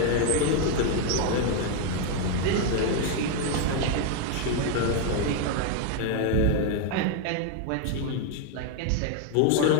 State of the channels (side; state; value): both; different; correlation 0.01